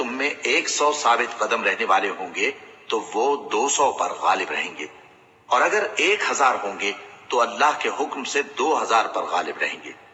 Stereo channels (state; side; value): identical; both; correlation 1.00